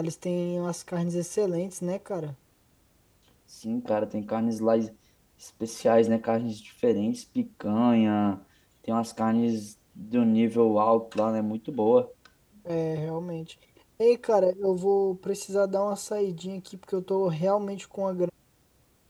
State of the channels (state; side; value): identical; both; correlation 1.00